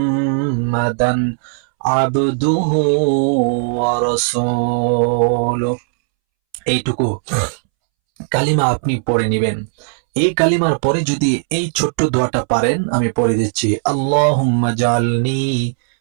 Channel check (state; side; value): silent; left; 66 dB below the other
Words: আবদুহু ওয়া রাসূলুহু। এইটুকু কালিমা আপনি পড়ে নেবেন। এই কালিমার পরে যদি এই ছোট্ট দোয়াটা পারেন, আমি পড়ে দিচ্ছি, আল্লাহুম্মা জালনি